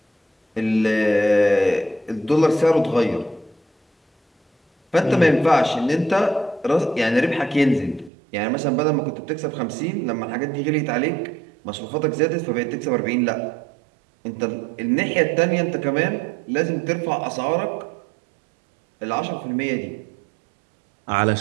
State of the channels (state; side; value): drops out; left; at 8.1 s